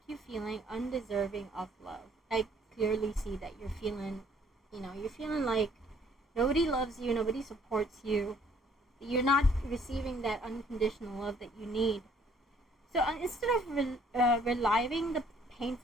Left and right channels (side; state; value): both; normal; correlation 0.61